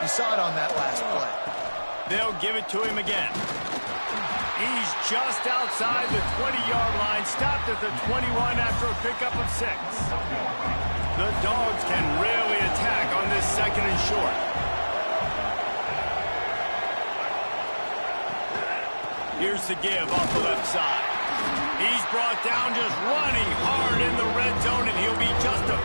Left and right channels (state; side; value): inverted; both; correlation -1.00